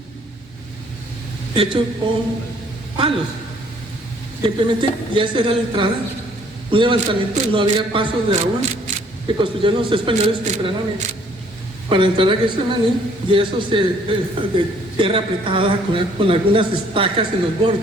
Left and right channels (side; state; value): both; normal; correlation 0.61